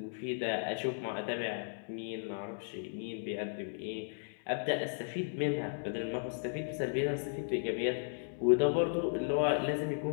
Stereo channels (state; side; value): silent; right; digital silence